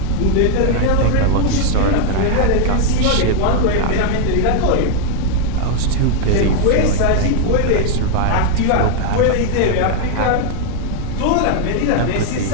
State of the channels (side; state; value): both; different; correlation 0.00